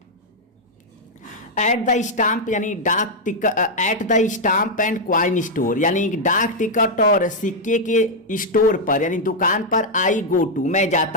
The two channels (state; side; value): normal; both; correlation -0.01